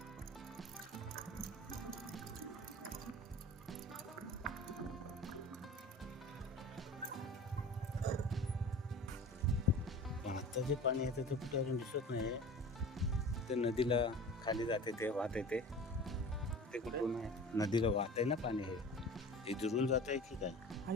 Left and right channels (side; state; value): both; normal; correlation 0.39